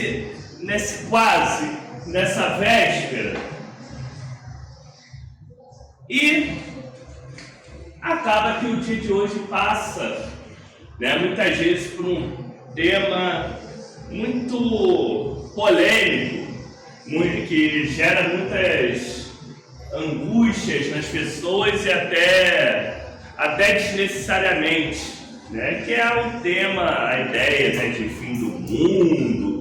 nessa véspera. E acaba que o dia de hoje passa, muitas vezes por um tema muito polêmico, que gera muitas angústias nas pessoas e até desnecessariamente, que é o tema, a ideia de fim do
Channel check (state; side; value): identical; both; correlation 1.00